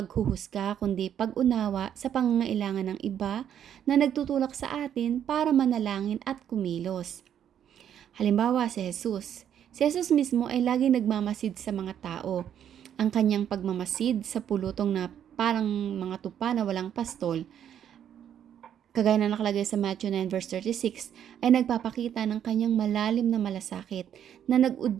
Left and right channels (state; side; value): quieter; left; 9.6 dB